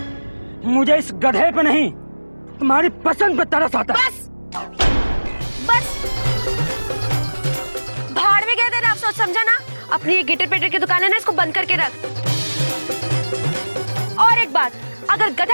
मुझे इस गधे पे नहीं, तुम्हारी पसंद पे तरस आता है। बस भाड़ में गए थे ना, अफसोस समझा ना। अपनी ये गिटर पेटर की दुकान है ना, इसको बंद करके रख। और एक बात, अगर गधा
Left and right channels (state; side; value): inverted; both; correlation -1.00